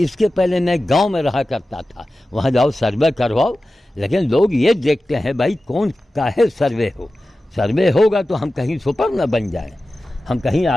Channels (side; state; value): both; normal; correlation 0.95